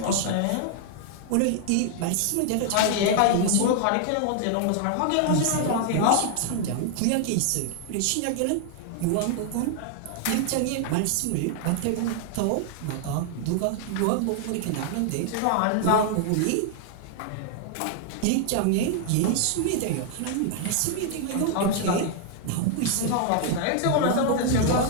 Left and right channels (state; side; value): different; both; correlation 0.00